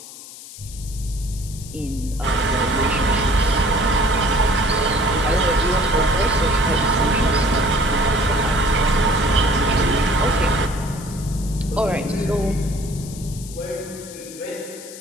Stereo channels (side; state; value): left; noise; hiss, 15 dB below the sound